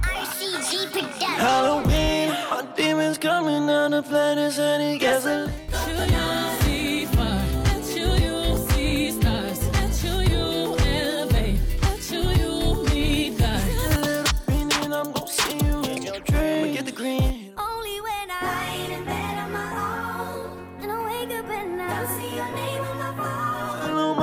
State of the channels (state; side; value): identical; both; correlation 1.00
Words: RCG Production. Halloween, my demons coming down the planet, any gasoline. Until you see fire, until you see stars, until you elevate, until you meet God. A little green and I'm gon' see you in your dreams. I'ma get the green. Only when I lie in bed on my own, and I wake up and I see your name on my phone. I know